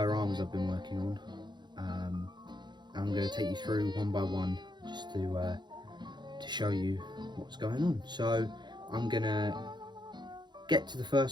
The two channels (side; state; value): left; late; 0.21 ms